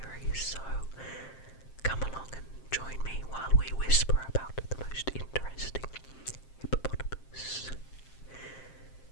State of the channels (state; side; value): late; right; 7.6 ms